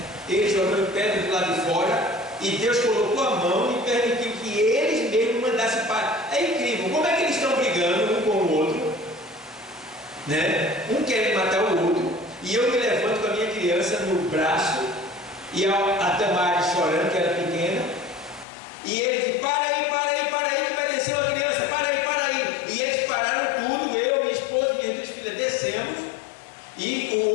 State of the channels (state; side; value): drops out; right; at 18.4 s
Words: eles jogando pedra do lado de fora, e Deus colocou a mão e permitiu que eles mesmos mandassem para. É incrível, como é que eles estão brigando um com o outro, né? Um quer matar o outro, e eu me levanto com a minha criança no braço, e a Tamara chorando, que era pequena, e eles dizem: para aí, que vai descer uma criança, para aí. E eles pararam tudo, eu, minha esposa e minhas duas filhas descemos, e